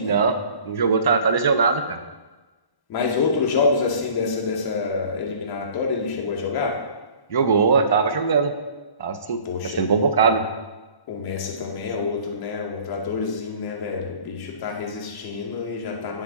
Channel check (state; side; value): late; right; 1.1 ms